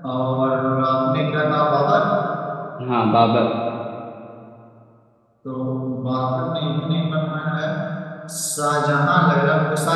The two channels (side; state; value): both; identical; correlation 1.00